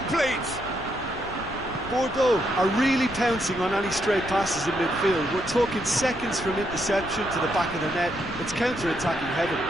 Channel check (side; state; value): left; noise; rumble, 14 dB below the sound